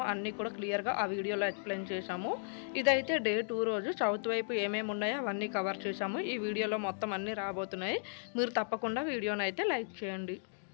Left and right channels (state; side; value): silent; right; digital silence